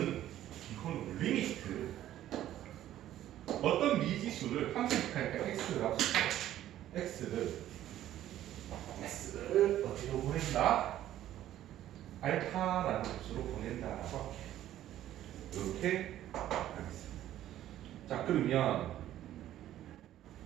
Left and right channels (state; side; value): quieter; left; 12.7 dB